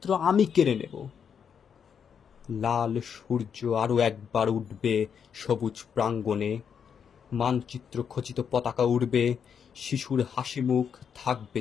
আমি কেড়ে নেব। লাল সূর্য আরো একবার উঠবে সবুজ প্রাঙ্গণে, মানচিত্র খচিত পতাকা উড়বে, শিশুর হাসি মুখ থাকবে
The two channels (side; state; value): right; quieter; 7.3 dB